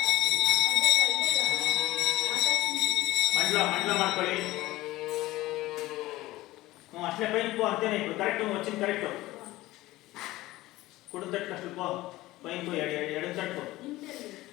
ಮಂಡಲ ಮಾಡ್ಕೊಳ್ಳಿ. ಅಷ್ಟೇ ಪೈನ್ ಪೋ ಅಂತೇನೆ ಇಟ್ಟು ಕರೆಕ್ಟ್ వచ్చింది ಕರೆಕ್ಟ್ ಕುಡು ತಟ್ಟು ಅಷ್ಟು ಪೋ ಪೈನ್ ಪೋ ಎಡ ತಟ್ಟು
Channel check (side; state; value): right; quieter; 17.8 dB